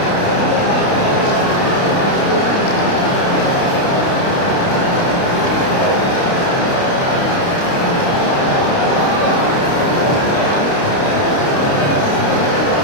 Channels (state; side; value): late; right; 29 ms